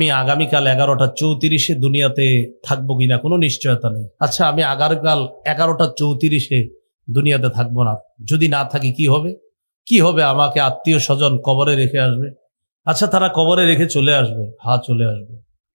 আগামীকাল 11টা 34 দুনিয়াতে থাকবো কিনা কোনো নিশ্চয়তা নেই। আচ্ছা, আমি আগামীকাল 11টা 34 দুনিয়াতে থাকবো না, যদি না থাকি কি হবে? কি হবে? আমাকে আত্মীয় স্বজন কবরে রেখে আসবে। আচ্ছা, তারা কবরে রেখে চলে আসবে, হ্যাঁ চলে আসবে।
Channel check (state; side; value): inverted; both; correlation -1.00